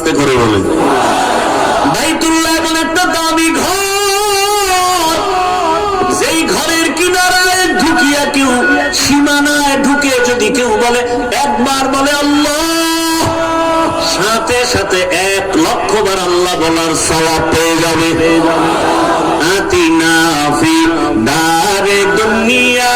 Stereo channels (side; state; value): both; identical; correlation 1.00